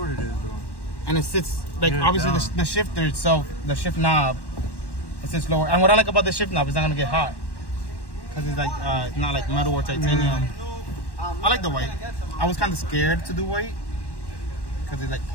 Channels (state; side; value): late; right; 1.1 ms